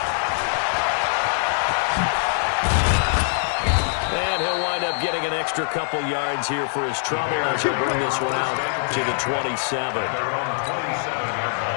And he'll wind up getting an extra couple yards here for his trouble as he'll bring this one out to the 27.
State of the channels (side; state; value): right; silent; digital silence